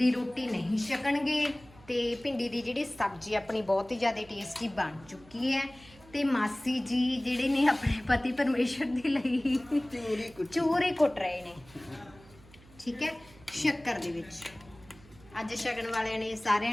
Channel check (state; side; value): noise; right; hum, 24 dB below the sound